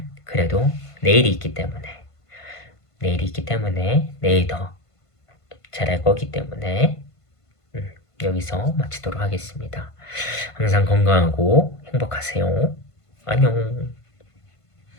그래도 내일이 있기 때문에 내일 더 잘할 거기 때문에 여기서 마치도록 하겠습니다. 항상 건강하고 행복하세요. 안녕.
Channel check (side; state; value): right; late; 1.5 ms